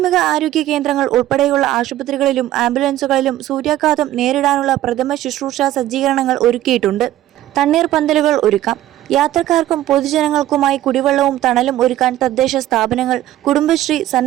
ആരോഗ്യ കേന്ദ്രങ്ങൾ ഉൾപ്പെടെയുള്ള ആശുപത്രികളിലും ആംബുലൻസുകളിലും സൂര്യാഘാതം നേരിടാനുള്ള പ്രഥമ ശുശ്രൂഷ സജ്ജീകരണങ്ങൾ ഒരുക്കിയിട്ടുണ്ട്. തണ്ണീർ പന്തലുകൾ ഒരുക്കാം. യാത്രക്കാർക്കും പൊതുജനങ്ങൾക്കുമായി കുടിവെള്ളവും തണലും ഒരുക്കാൻ തദ്ദേശ സ്ഥാപനങ്ങൾ, കുടുംബശ്രീ,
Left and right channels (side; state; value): left; quieter; 13.8 dB